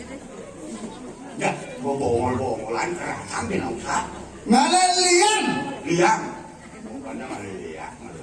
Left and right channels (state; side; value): identical; both; correlation 1.00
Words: ya bongol-bongolan kerasan di nausa ngalilian liang bukannya ngaliliang